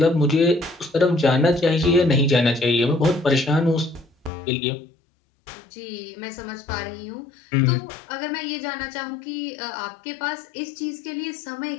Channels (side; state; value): right; drops out; at 4.3 s